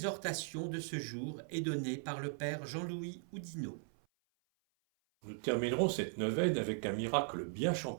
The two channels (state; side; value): silent; left; 52 dB below the other